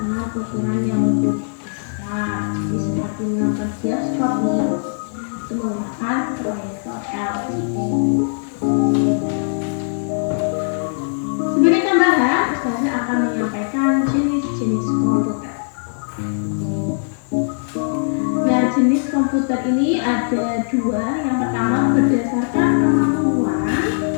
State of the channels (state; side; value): silent; right; digital silence